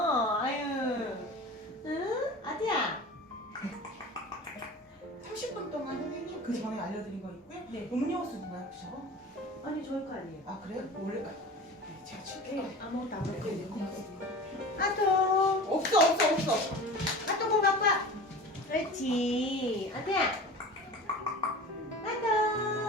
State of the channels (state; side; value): normal; both; correlation 0.36